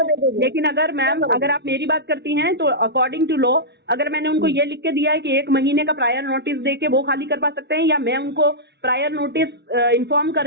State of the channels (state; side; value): late; left; 0.50 ms